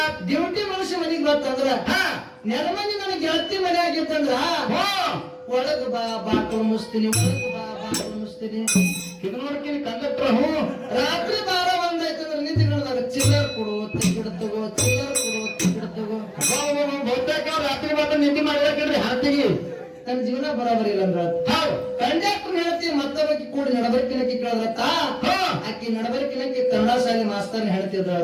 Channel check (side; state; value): both; identical; correlation 1.00